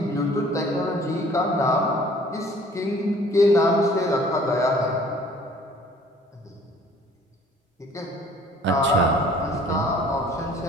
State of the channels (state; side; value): normal; both; correlation 0.54